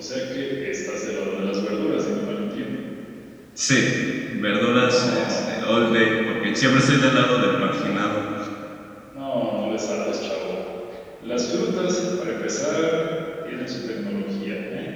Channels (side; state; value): both; identical; correlation 1.00